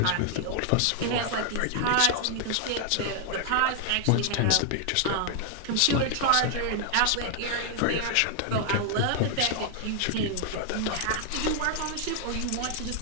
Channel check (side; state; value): both; different; correlation 0.00